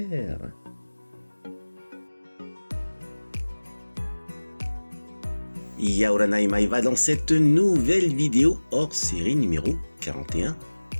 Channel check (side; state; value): both; inverted; correlation -1.00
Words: Yaoranai Maeva dans cette nouvelle vidéo hors série numéro 41.